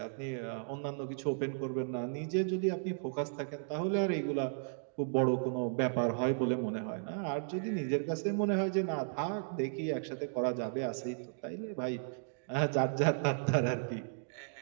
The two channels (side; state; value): left; silent; digital silence